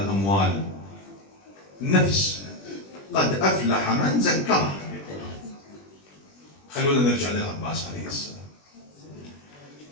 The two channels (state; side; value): late; right; 20 ms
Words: الأموال. النفس قد أفلح من زكاها. خلونا نرجع للعباس عليه السلام.